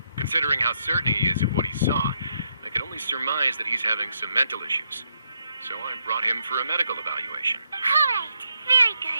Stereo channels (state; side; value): inverted; both; correlation -0.77